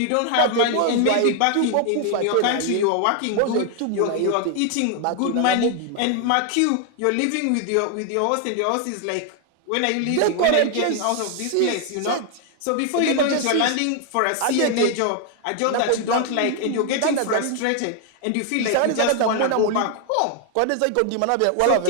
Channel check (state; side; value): different; both; correlation 0.00